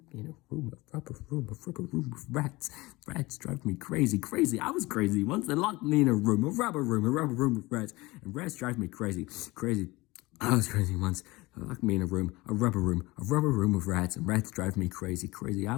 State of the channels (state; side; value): quieter; right; 21.5 dB